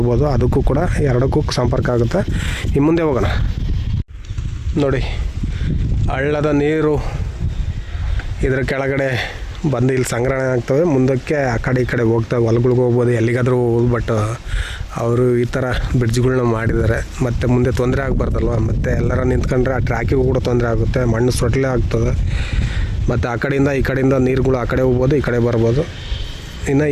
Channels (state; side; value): identical; both; correlation 1.00